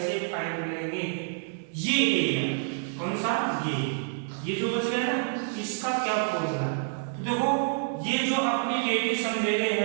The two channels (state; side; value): silent; left; 59 dB below the other